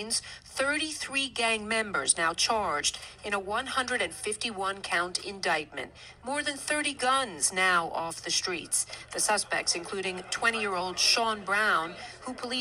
33 gang members now charged in a 151-count indictment. More than 30 guns now off the streets. The suspects, including 20-year-old Sean Brown, who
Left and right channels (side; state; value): both; identical; correlation 1.00